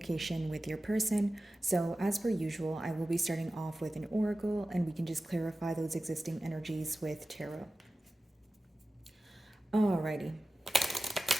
with your person. So, as per usual, I will be starting off with an oracle and we can just clarify those existing energies with tarot. Alrighty.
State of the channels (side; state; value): both; normal; correlation 0.95